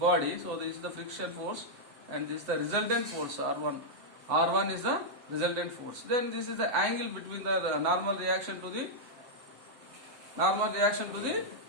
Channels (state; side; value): late; left; 7.7 ms